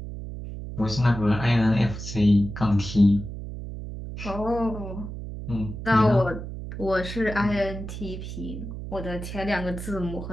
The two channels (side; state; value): right; noise; hum, 8 dB below the sound